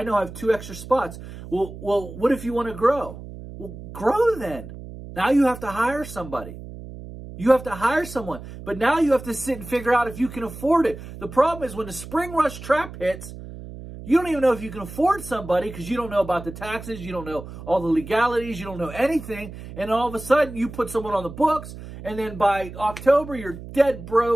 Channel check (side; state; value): right; noise; hum, 13 dB below the sound